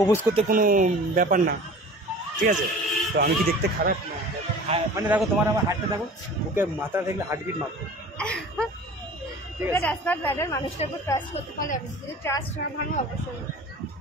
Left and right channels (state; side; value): normal; both; correlation 0.41